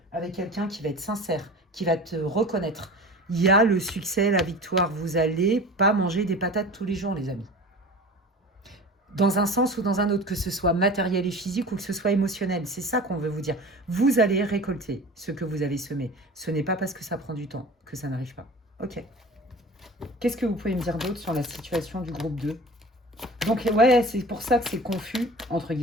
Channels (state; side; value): normal; both; correlation 0.37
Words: avec quelqu'un qui va être sincère, qui va te reconnaître. Il y a le succès, la victoire. Vous n'allez pas manger des patates tous les jours, les amis. Dans un sens ou dans un autre, que ce soit matériel et physique ou que ce soit émotionnel. C'est ça qu'on veut vous dire. Vous allez récolter ce que vous avez semé. Ce n'est pas parce que ça prend du temps que ça n'arrive pas. Ok. Qu'est-ce que vous pouvez me dire d'autre sur la situation du groupe 2? Donc, ouais, c'est pour ça que c'est confus, entre